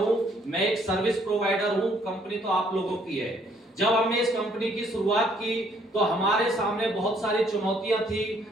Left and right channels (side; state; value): both; normal; correlation 0.65